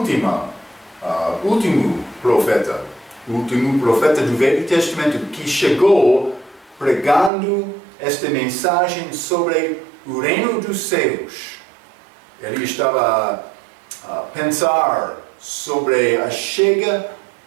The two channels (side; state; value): left; drops out; at 7.3 s